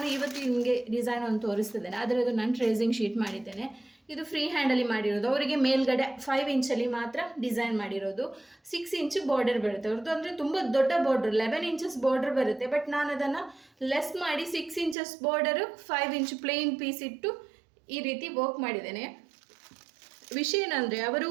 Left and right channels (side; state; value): left; drops out; at 15.0 s